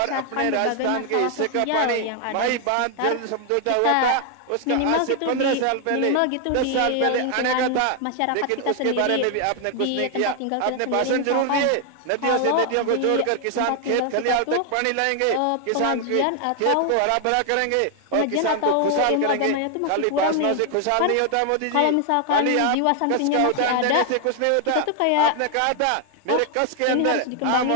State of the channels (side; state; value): both; different; correlation 0.00